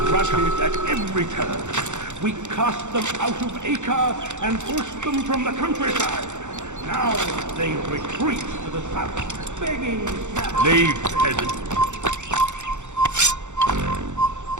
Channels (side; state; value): left; late; 0.84 ms